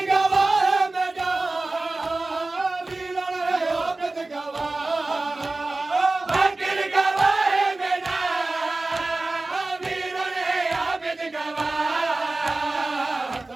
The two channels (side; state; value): left; quieter; 3.1 dB